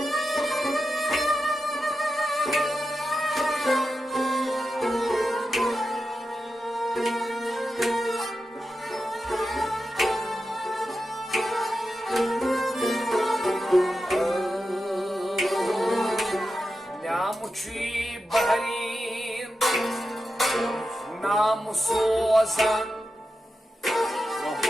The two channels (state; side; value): normal; both; correlation 0.90